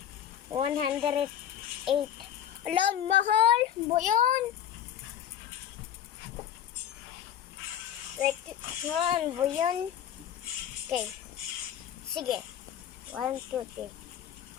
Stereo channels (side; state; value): right; quieter; 9.9 dB